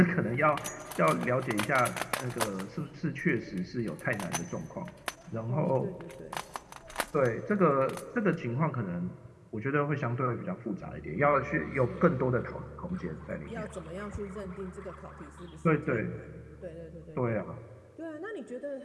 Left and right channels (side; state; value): both; identical; correlation 1.00